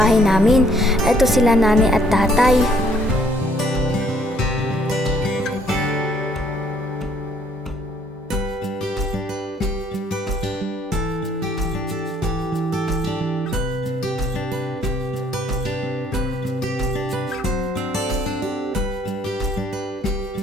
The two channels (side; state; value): both; normal; correlation 0.64